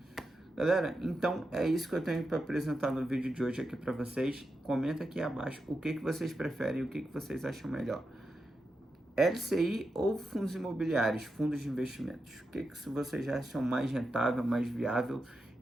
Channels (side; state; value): both; normal; correlation 0.88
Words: Galera, então é isso que eu tenho para apresentar no vídeo de hoje aqui para vocês. Comenta aqui abaixo o que vocês preferem e o que vocês acham melhor. LCI ou fundos imobiliários, fundos de investimentos? O que vocês acham mais rentável, mais viável?